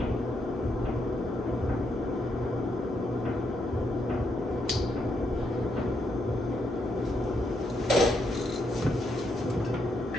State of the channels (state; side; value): normal; both; correlation 0.78